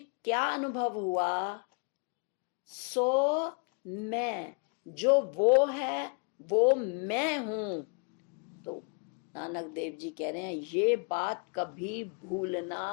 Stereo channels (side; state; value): right; quieter; 34.6 dB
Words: क्या अनुभव हुआ? सो मैं, जो वो है वो मैं हूं। तो नानक देव जी कह रहे हैं, ये बात कभी